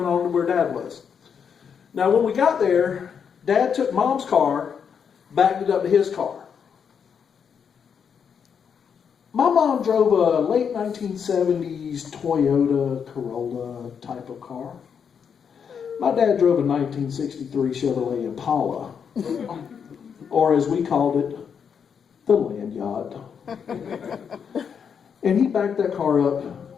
on to where Dad was. Now, when we got there, Dad took Mom's car, backed it up to his car. My mom drove a late 1970s Toyota Corolla type of car. My dad drove a 1963 Chevrolet Impala, or as we called it, the land yacht. And he backed that car up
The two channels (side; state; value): right; quieter; 7.1 dB